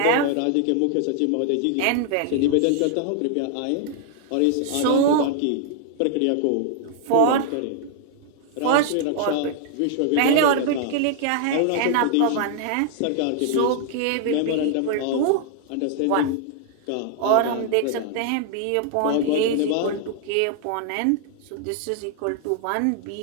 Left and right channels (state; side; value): different; both; correlation 0.00